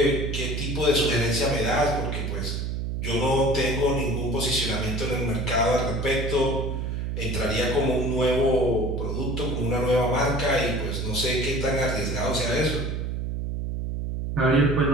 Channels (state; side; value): noise; right; hum, 2 dB below the sound